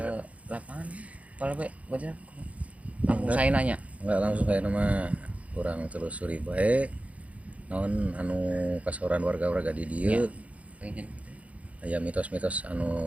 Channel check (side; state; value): left; late; 0.066 ms